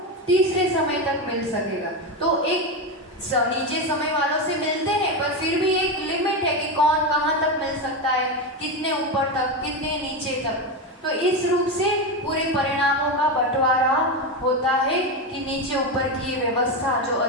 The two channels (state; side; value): normal; both; correlation 0.14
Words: तीसरे समय तक मिल सकेगा। तो एक नीचे समय वालों से मिलते हैं पर फिर भी एक लिमिट है कि कौन कहाँ तक मिल सकता है, कितने ऊपर तक, कितने नीचे तक। तो इस रूप से पूरे परिणामों का बंटवारा होता है कि नीचे ऊपर की ये व्यवस्था जो